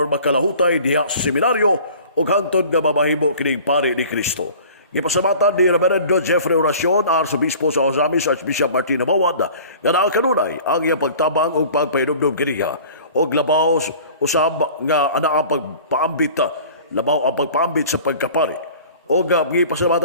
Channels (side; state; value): both; inverted; correlation -0.45